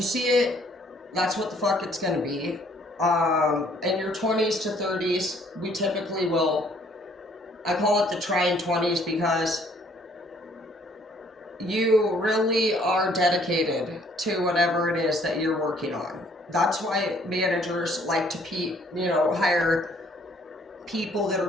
see it, that's what the fuck it's gonna be. In your 20s to 30s, we typically will, I call it the trying 20s, because you really are dedicated to whatever it is that you're working on. That's why managers like to hire people that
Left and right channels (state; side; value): normal; both; correlation 0.62